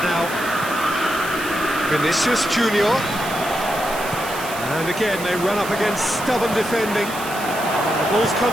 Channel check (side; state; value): right; noise; hiss, 11 dB below the sound